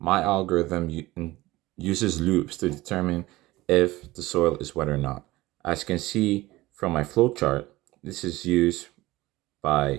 my algorithm uses loops to determine if the soil is wet or not. As you can see from my flowchart, this is used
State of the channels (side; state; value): left; quieter; 18.8 dB